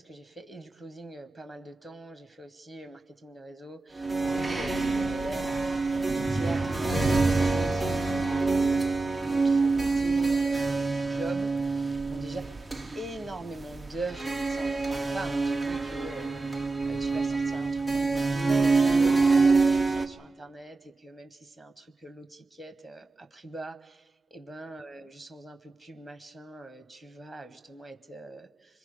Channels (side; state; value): left; quieter; 3.4 dB